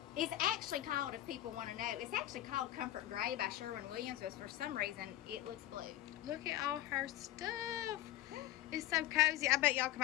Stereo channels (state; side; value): quieter; right; 14.6 dB